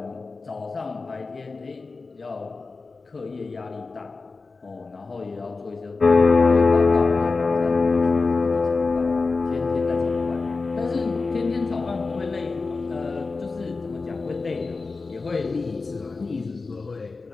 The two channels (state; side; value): quieter; right; 4.0 dB